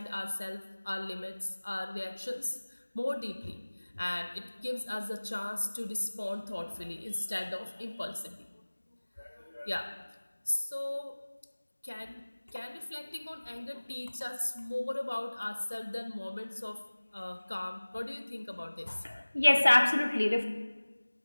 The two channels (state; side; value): inverted; both; correlation -1.00